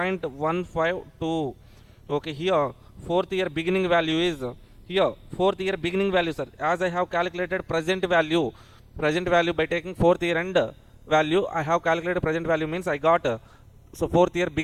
Okay, here fourth year beginning value is here fourth year beginning value, sir. As I have calculated present value by taking fourth year end value, I have calculated present value means I got so fourth year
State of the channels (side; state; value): both; identical; correlation 1.00